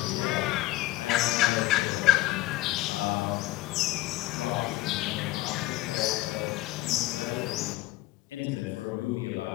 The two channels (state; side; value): quieter; right; 18.2 dB